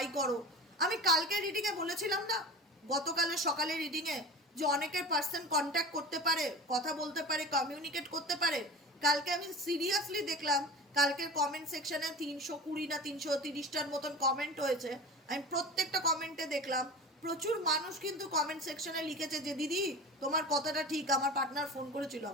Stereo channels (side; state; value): both; normal; correlation 0.32